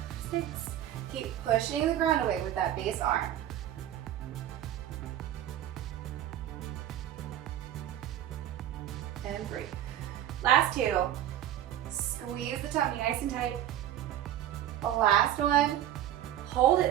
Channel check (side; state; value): left; quieter; 11.9 dB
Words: 6. Keep pushing the ground away with that base arm. And 3. Last 2. Squeeze the tummy nice and tight. The last one. Hold